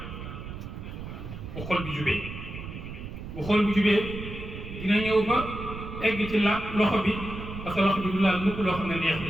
bu xol bi jubee bu xol bi jubee dina ñëw ba egg ci loxo bi parce que loxo bi du laal mukk loo xam ne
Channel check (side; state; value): right; noise; rumble, 10 dB below the sound